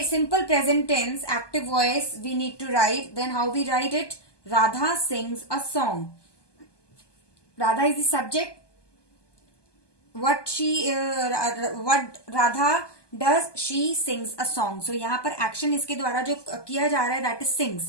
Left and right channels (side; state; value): right; late; 1.2 ms